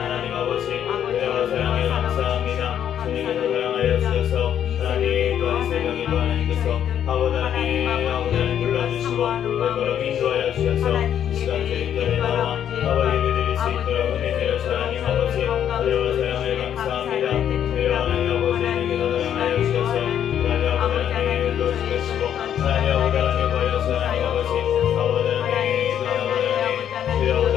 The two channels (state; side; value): quieter; right; 9.7 dB